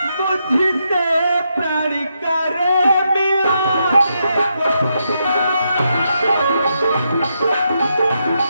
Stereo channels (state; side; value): inverted; both; correlation -0.82